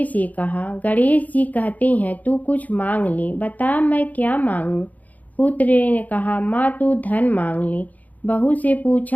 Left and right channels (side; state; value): right; late; 0.077 ms